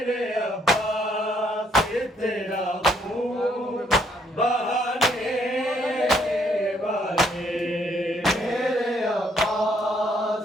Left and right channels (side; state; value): both; normal; correlation 0.69